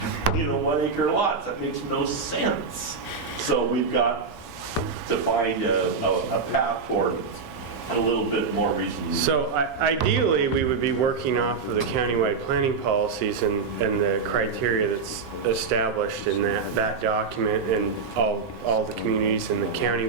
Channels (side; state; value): left; quieter; 5.0 dB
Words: 1 acre lots? That makes no sense. So we've got to find a path forward. A little bit more reason. So ideally, we would be working off of the countywide planning policies and the criteria that's established in that document, and all the communities in the county